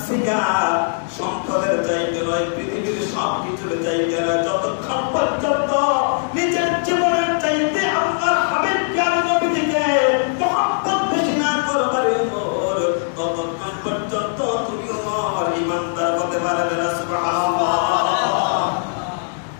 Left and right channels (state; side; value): silent; right; digital silence